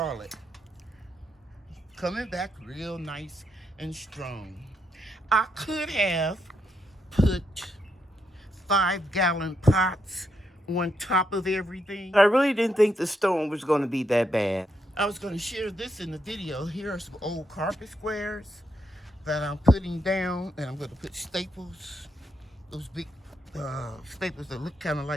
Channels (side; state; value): both; normal; correlation 0.80